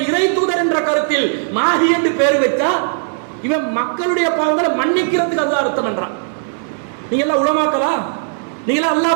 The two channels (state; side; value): silent; left; 68 dB below the other